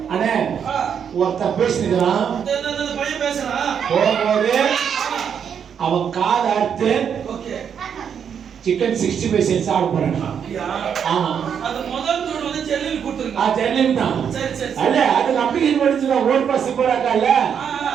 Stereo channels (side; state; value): left; quieter; 7.7 dB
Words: அண்ணே ஒருத்தன் பேசினுக்கிறான். இந்த பையன் பேசுறான். போகும்போது அவன் காதை அறுத்து ஓகே. சிக்கன் 65 சென்ஸ் ஆட போறான். அப்படியா? ஆமா. அது முதல் தூள் வந்து செல்லில் கொடுத்துருங்க. ஜெர்லின் தான். சரி சரி. அல்ல அதுக்கு அப்ளிகேஷன் படிச்சுதான் ஓட் பாஸ் போறாங்கல்ல